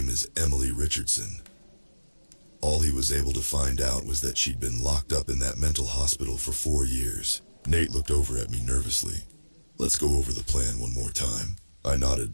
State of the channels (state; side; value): inverted; both; correlation -1.00